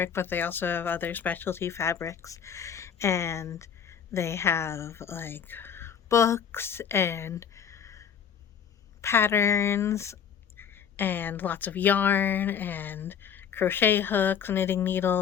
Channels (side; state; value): right; quieter; 7.9 dB